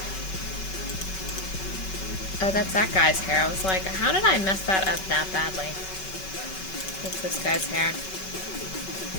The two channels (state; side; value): late; right; 5.3 ms